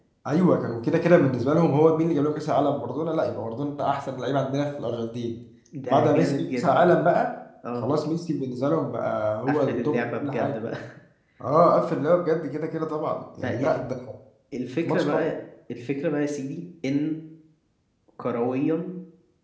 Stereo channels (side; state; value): both; identical; correlation 1.00